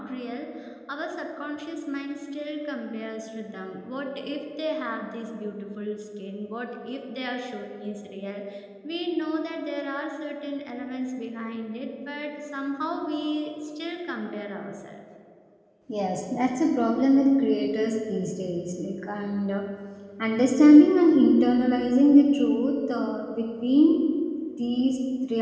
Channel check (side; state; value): both; identical; correlation 1.00